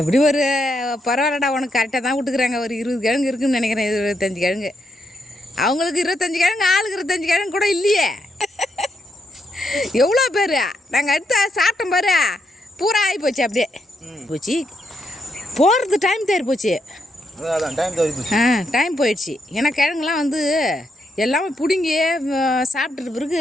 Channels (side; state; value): both; normal; correlation 0.79